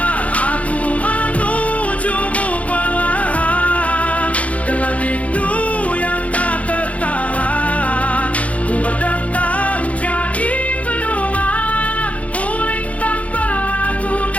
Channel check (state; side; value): late; right; 0.066 ms